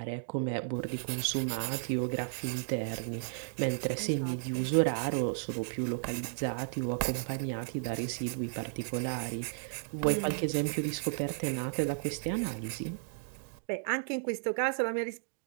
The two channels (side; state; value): left; silent; digital silence